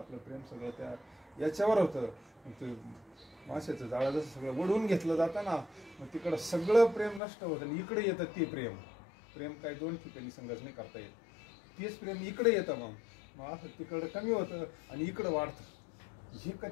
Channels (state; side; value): drops out; right; at 7.2 s